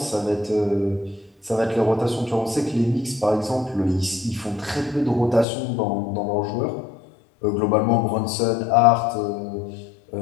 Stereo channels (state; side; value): drops out; right; at 5.5 s